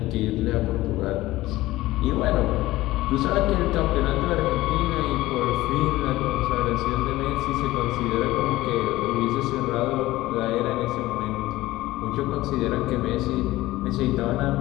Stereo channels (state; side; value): quieter; right; 17.5 dB